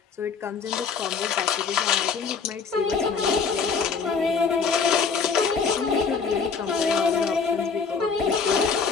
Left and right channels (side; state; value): right; quieter; 5.6 dB